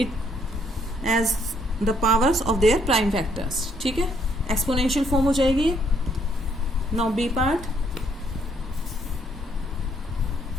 as the powers of their prime factors. ठीक है, एक्सपोनेंशियल फॉर्म हो जाएगी. Now B part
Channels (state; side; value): normal; both; correlation 0.69